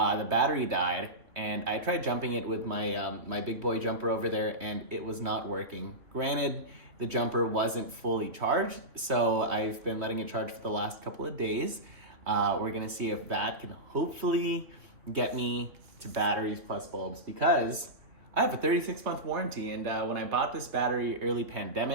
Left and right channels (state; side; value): late; left; 2.9 ms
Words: battery died, and I tried jumping it with my big boy jumper over there, and it was not working. Granted, the jumper wasn't fully charged, so I've been letting it charge for the last couple of days. We're gonna see if that can hopefully get me to batteries plus bulbs, because I have a 36-month warranty, and when I bought this battery early